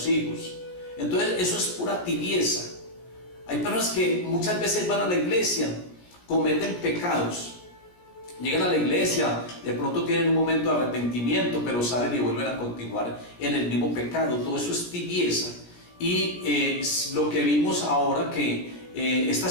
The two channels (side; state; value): right; late; 17 ms